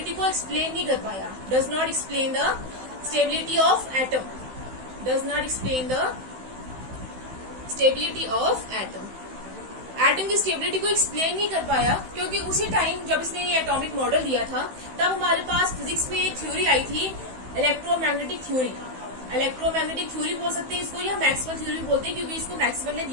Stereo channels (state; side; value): late; left; 16 ms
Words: को एक्सप्लेन नहीं कर पाया। Does not explain the stability of atom. Does not explain the stability of atom. Atom की स्टेबिलिटी को एक्सप्लेन नहीं कर पाया क्योंकि उसी टाइम जब इसने ये एटॉमिक मॉडल दिया था तब हमारे पास फिजिक्स में एक थ्योरी आई थी, इलेक्ट्रोमैग्नेटिक थ्योरी। इलेक्ट्रोमैग्नेटिक थ्योरी बोल सकते हैं इसको, या मैक्सवेल थ्योरी बोलते हैं क्योंकि इसको मैक्सवेल ने